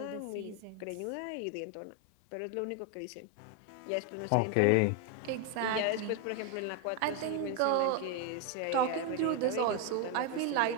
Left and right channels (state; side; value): different; both; correlation 0.01